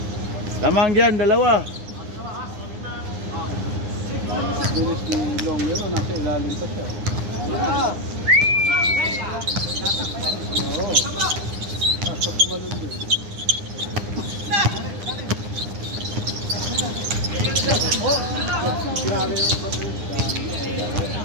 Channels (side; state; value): left; late; 9.8 ms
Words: Lamang dyan, dalawa. Bilis ni Longero, nasa ilalim pa siya. Oo. Nasa tumalun din. Grabe yung patuloy.